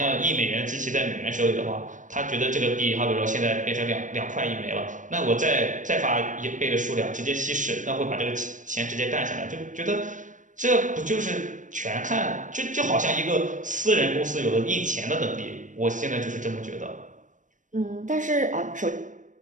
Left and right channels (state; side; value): late; left; 0.37 ms